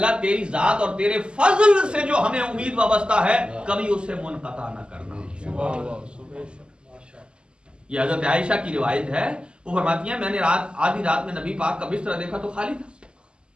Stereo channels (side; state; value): left; late; 0.050 ms